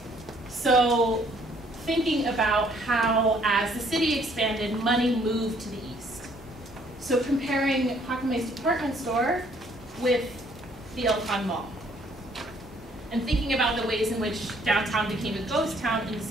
So thinking about how, as the city expanded, money moved to the east. So comparing Jacqueme's department store with the El Con Mall. And thinking about the ways in which downtown became a ghost town in the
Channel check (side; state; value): both; normal; correlation 0.63